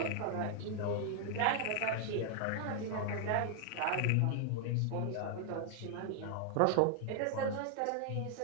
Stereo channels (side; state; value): both; different; correlation 0.00